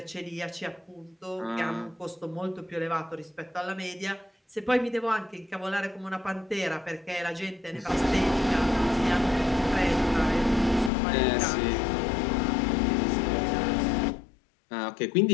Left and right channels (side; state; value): right; drops out; at 10.9 s